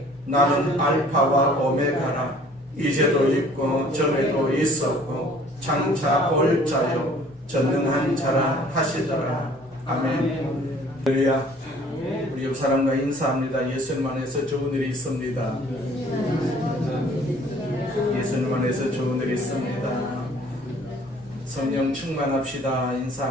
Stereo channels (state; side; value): normal; both; correlation 0.54